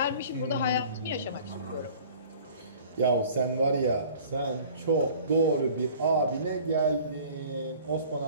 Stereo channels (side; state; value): both; inverted; correlation -0.48